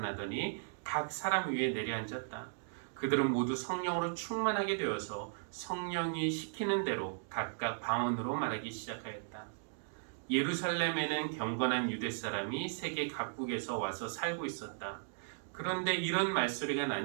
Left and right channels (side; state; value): left; silent; digital silence